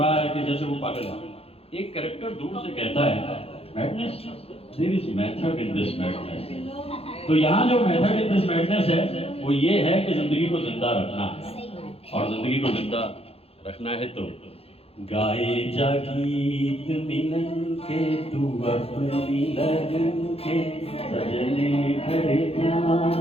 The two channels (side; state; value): right; late; 0.29 ms